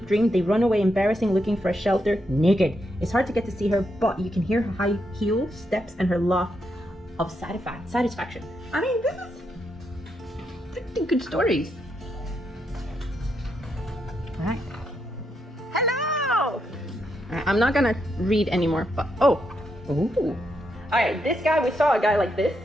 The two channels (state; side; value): normal; both; correlation 0.81